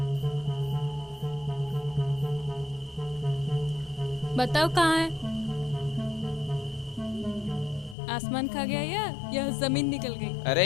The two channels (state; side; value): drops out; right; at 8.0 s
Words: बताओ कहाँ है? आसमान खा गया या जमीन निकल गई? अरे